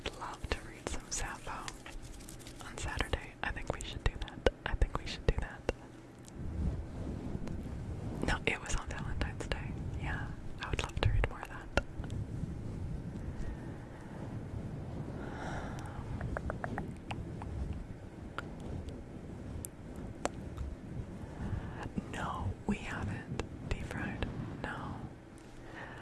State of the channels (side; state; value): both; identical; correlation 1.00